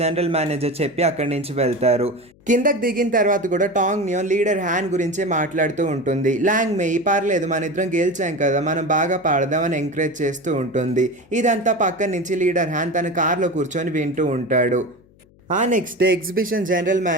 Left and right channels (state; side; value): noise; left; hum, 29 dB below the sound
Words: జనరల్ మేనేజర్ చెప్పి అక్కడి నుంచి వెళ్తారు. కిందకు దిగిన తర్వాత కూడా టాంగ్ నియాన్ లీడర్ హ్యాన్ గురించే మాట్లాడుతూ ఉంటుంది. లాంగ్ మేయి, పర్లేదు మన ఇద్దరం గెలిచాం కదా, మనం బాగా పాడదామని ఎంకరేజ్ చేస్తూ ఉంటుంది. ఇదంతా పక్కన నుంచి లీడర్ హ్యాన్ తన కార్లో కూర్చొని వింటూ ఉంటాడు. ఆ next day exhibition general